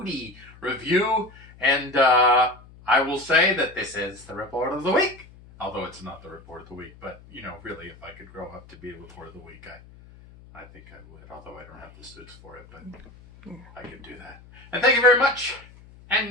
review, and I will say that this is the report of the week, although it's not the report of the week, but, you know, really, if I could grow up to be a report of the week, I think I would, although I don't have the suits for it, but I could do that. And thank you very much,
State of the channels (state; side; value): noise; left; hum, 22 dB below the sound